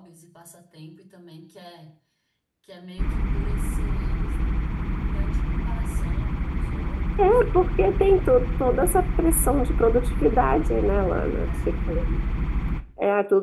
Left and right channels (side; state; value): both; identical; correlation 1.00